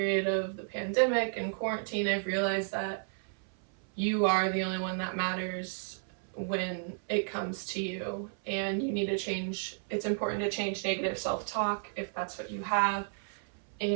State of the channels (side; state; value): left; silent; 56 dB below the other